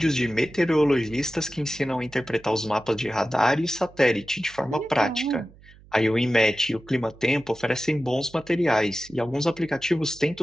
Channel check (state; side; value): noise; right; hum, 24 dB below the sound